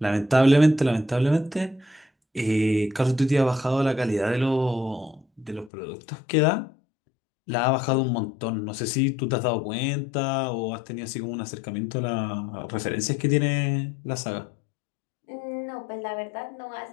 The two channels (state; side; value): drops out; right; at 5.7 s